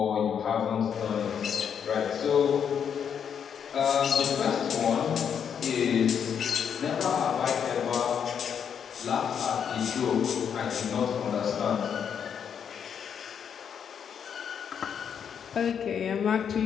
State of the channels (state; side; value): quieter; right; 7.8 dB